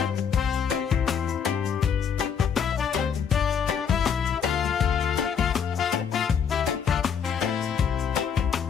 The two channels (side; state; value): right; quieter; 7.2 dB